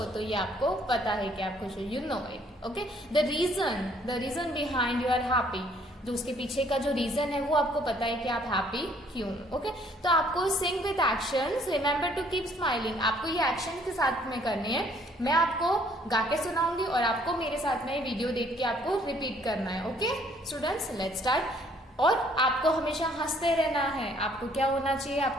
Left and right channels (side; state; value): both; normal; correlation 0.62